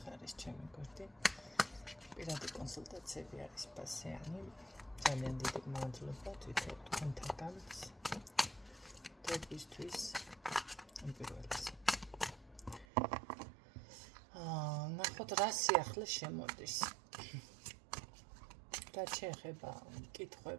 არის ჩემი გვერდი. პირადი კონსულტაციები არის პასიანი. ძალიან დიდი მადლობა თვითონ თქვენთაგან დღეისთვის პირველს. ნახოთ რა სიახლე შემოდის. რა შეეხება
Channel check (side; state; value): left; drops out; at 12.9 s